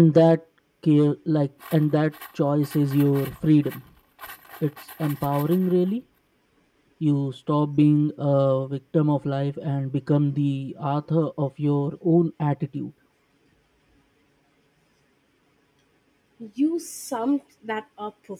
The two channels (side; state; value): both; identical; correlation 1.00